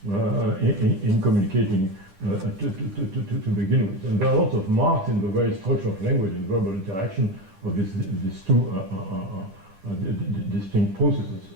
in communicating to begin with. And there are lots of marks in the very structure of language and verbal interaction of these two distinct processes.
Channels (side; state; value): left; late; 10 ms